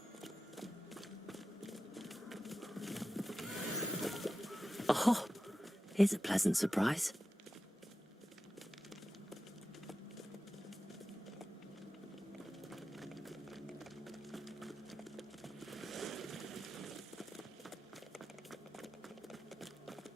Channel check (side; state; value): both; normal; correlation 0.93